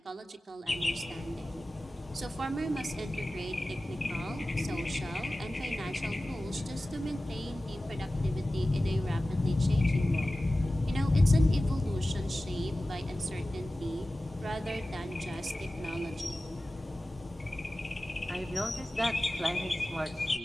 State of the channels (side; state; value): both; normal; correlation 0.96